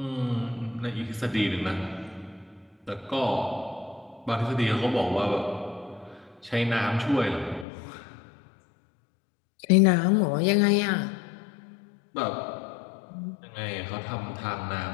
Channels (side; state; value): right; drops out; at 7.7 s